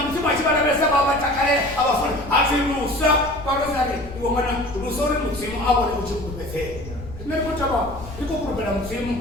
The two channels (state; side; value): noise; left; rumble, 14 dB below the sound